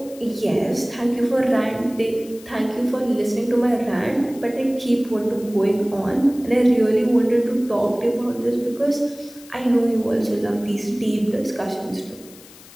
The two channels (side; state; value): left; noise; hiss, 21 dB below the sound